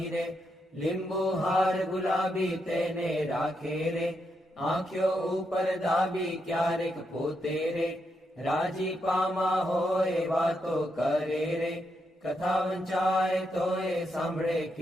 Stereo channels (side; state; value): both; normal; correlation 0.81